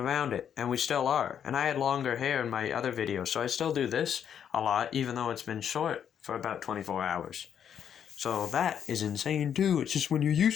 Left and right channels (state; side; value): quieter; right; 8.6 dB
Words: it, and we still are. And I had longer hair in my other videos, so I still do this a lot, even though it's been short for about 24 hours. So that is insane too. It's just when you're